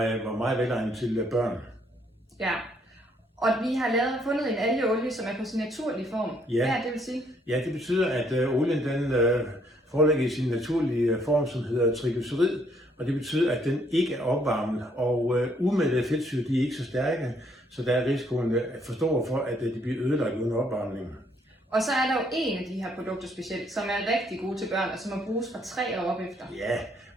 var meget velegnet til børn. Ja, og vi har fundet en algeolie, som er på sin naturlige form. Ja. Hvad er det vil sige? Ja, det betyder, at olien den foreligger i sin naturlige form, som hedder triglycerid, og det betyder, at den ikke er opvarmet, og umættede fedtsyre de er ikke så stærke, så der er risikoen for stor for, at de bliver ødelagt uden opvarmning. Og så er der jo en af de her produkter specielt, som er rigtig gode til børn, og som må bruges fra 3 år op efter. Ja,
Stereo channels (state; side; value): normal; both; correlation 0.68